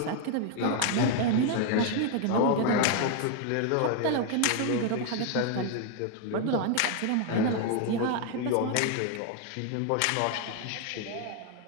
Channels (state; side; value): different; both; correlation 0.01